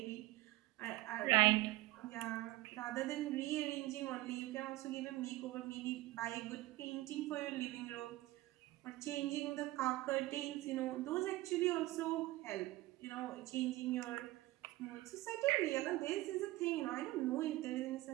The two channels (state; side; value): quieter; left; 18.2 dB